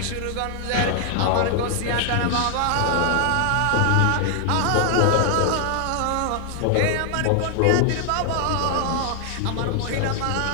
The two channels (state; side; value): different; both; correlation 0.00